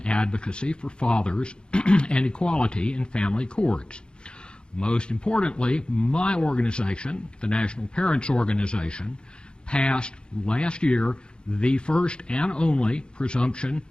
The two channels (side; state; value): right; late; 0.051 ms